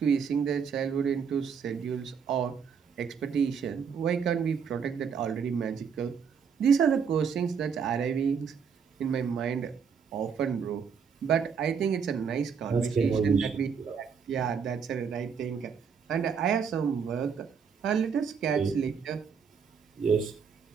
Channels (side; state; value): left; quieter; 6.5 dB